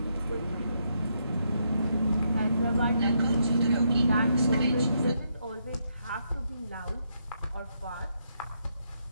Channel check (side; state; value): both; inverted; correlation -0.77